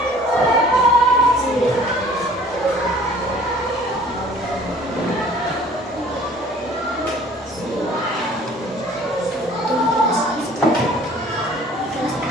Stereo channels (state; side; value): normal; both; correlation 0.51